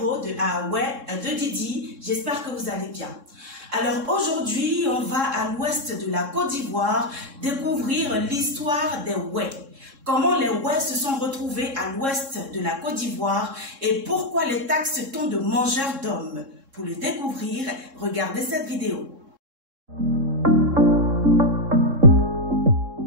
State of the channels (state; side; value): late; left; 3.7 ms